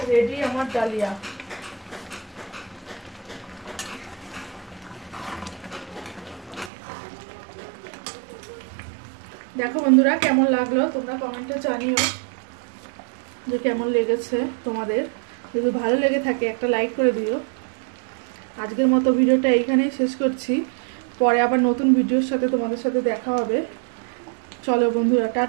রেডি আমার ডালিয়া। দেখো বন্ধুরা কেমন লাগলো তোমরা কমেন্টে জানিও যে কেমন লেগেছে তোমাদের। যদি ভালো লেগে থাকে একটা লাইক করে দিও। আজকের মতো ভিডিওটা এইখানেই শেষ করছি, পরে আবার নতুন ভিডিওর সাথে তোমাদের সাথে দেখা হবে। চলো বন্ধুরা,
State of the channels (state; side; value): drops out; left; at 6.7 s